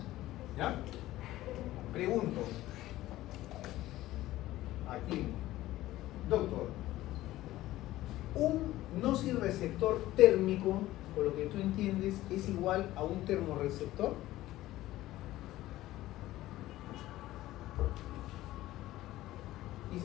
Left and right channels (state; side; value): quieter; right; 15.9 dB